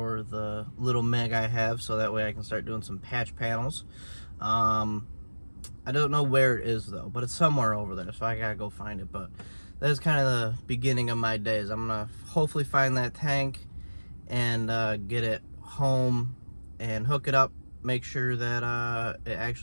the little Meg I have, so that way I can start doing some patch panels. I don't know where it is though, but it's somewhere over there, so I gotta go find it. But that's kind of the beginning of my days. I'm gonna hopefully find that tank and get it home and hook it up, make sure that it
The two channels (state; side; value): inverted; both; correlation -1.00